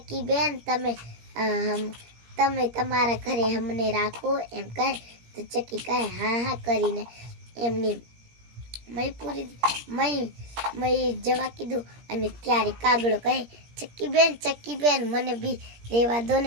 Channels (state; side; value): late; left; 17 ms